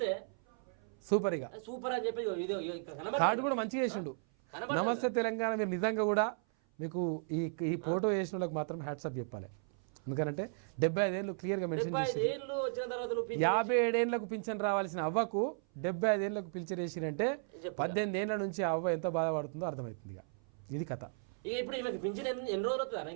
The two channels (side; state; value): left; silent; 54 dB below the other